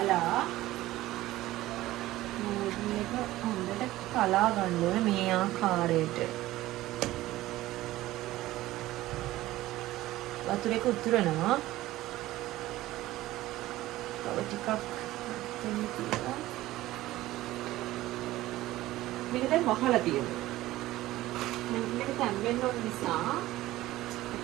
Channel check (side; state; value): left; quieter; 16.4 dB